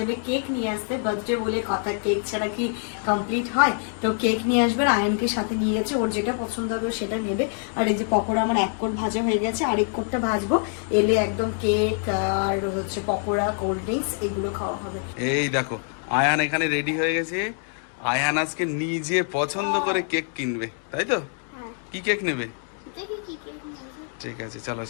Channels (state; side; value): silent; right; 56 dB below the other